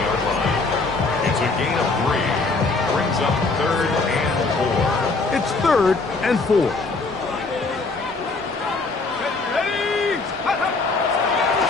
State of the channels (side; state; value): right; quieter; 3.8 dB